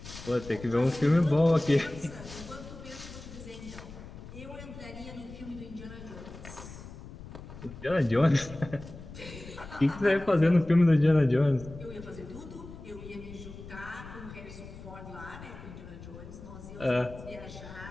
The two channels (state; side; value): noise; left; rumble, 14 dB below the sound